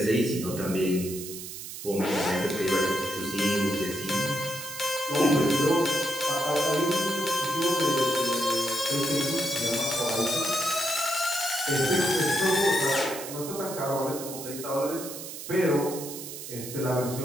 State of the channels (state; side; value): noise; right; hiss, 10 dB below the sound